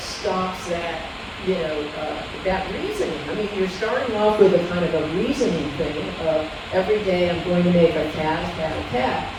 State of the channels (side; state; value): both; identical; correlation 1.00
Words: stops that, that reasoning. I mean, you're starting off with a kind of a reasoning thing of every day I'm going to make a cat, a cat, a cat.